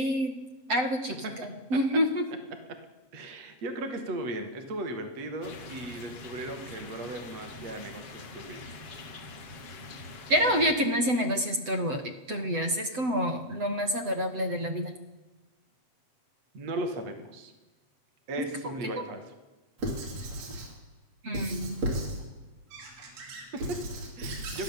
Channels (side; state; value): left; late; 7.9 ms